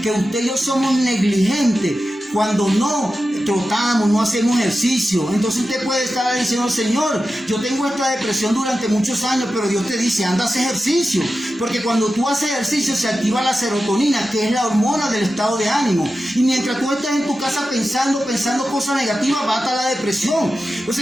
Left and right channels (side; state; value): both; normal; correlation 0.92